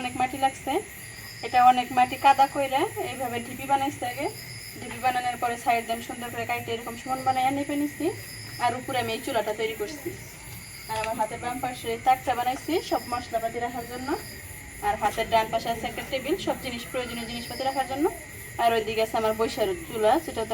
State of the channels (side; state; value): both; identical; correlation 1.00